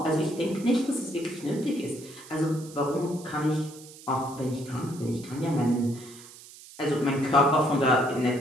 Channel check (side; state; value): right; noise; hiss, 19 dB below the sound